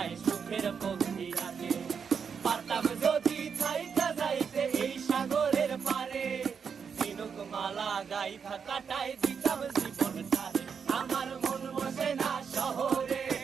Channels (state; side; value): quieter; left; 6.5 dB